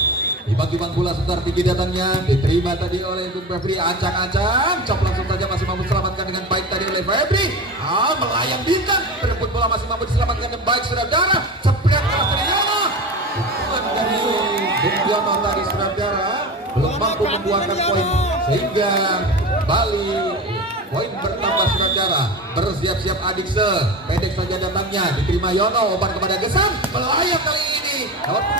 Dibagi-bagi bola sebentar tinggi datangnya, diterima tadi oleh Bung Febri, ancang-ancang, cop langsung saja, masih mampu diselamatkan dengan baik tadi oleh Febri. Melayang bintang, berebut bola masih mampu diselamatkan dengan baik, saudara. Cepat keras dari Yono. Dari Bung Yono tadi, saudara, belum mampu membuahkan poin, sehingga Bali poin bertambah, saudara. Bersiap-siap Adikse, pendek saja datangnya, diterima Yono, umpan kepada Gesang, melayang kali ini. Nomor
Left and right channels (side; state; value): both; normal; correlation 0.28